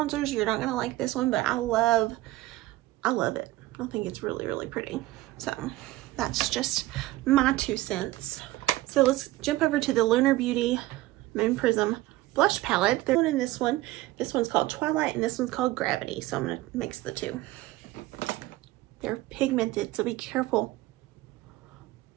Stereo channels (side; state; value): left; quieter; 17.5 dB